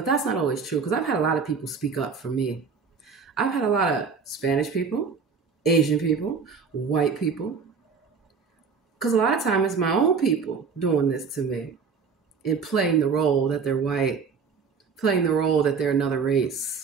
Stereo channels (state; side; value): quieter; left; 5.5 dB